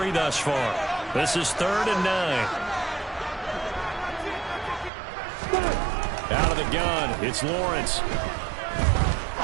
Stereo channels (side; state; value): left; drops out; at 4.9 s